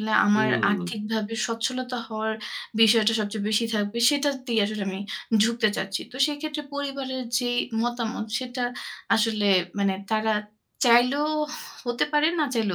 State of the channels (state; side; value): identical; both; correlation 1.00